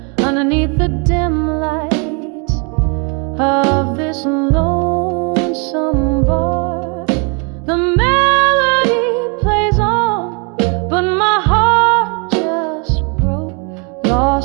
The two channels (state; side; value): quieter; left; 34.9 dB